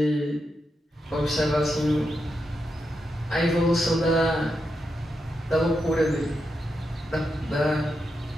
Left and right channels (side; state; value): both; normal; correlation 0.86